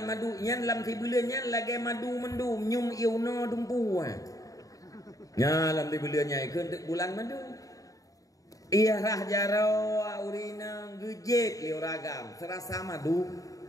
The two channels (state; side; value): late; right; 0.17 ms